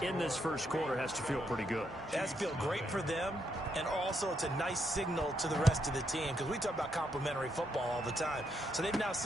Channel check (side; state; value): both; normal; correlation 0.78